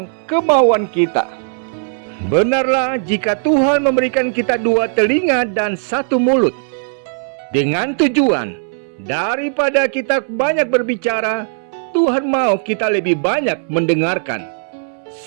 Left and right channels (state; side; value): silent; left; digital silence